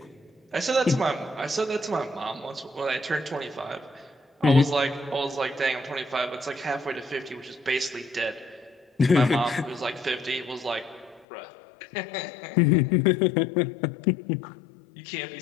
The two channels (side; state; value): right; drops out; at 11.2 s